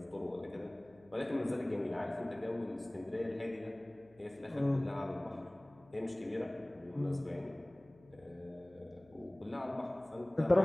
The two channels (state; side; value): noise; left; hum, 27 dB below the sound